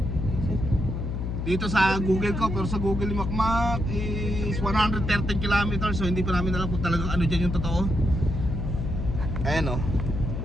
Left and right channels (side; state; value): left; noise; hum, 3 dB below the sound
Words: Dito sa Google ko, pero sa Google ni Makmak is 113 kilometers. So, hindi pa namin alam kung talagang ano dyan yung totoo. Ayan o.